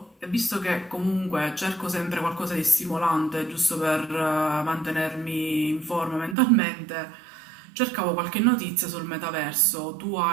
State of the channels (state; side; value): drops out; left; at 6.4 s